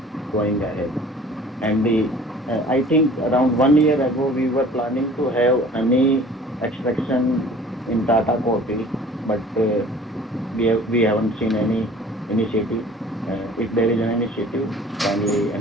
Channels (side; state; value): both; normal; correlation 0.48